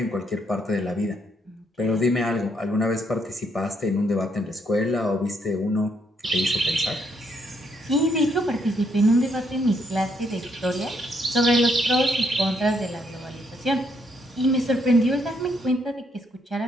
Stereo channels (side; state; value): both; normal; correlation 0.73